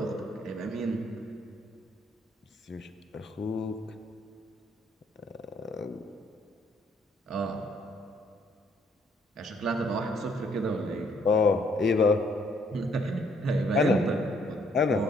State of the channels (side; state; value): both; normal; correlation 0.67